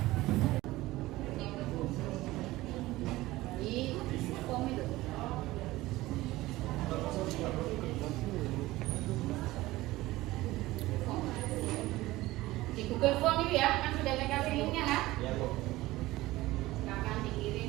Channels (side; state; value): left; quieter; 18.1 dB